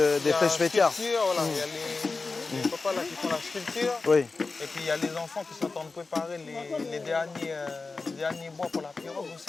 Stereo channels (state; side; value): quieter; right; 4.0 dB